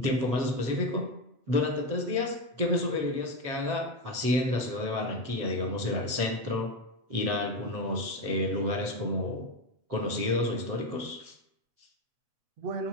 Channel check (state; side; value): late; left; 8.0 ms